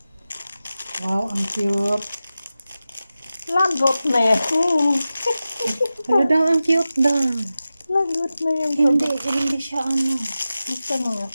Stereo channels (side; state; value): both; inverted; correlation -0.94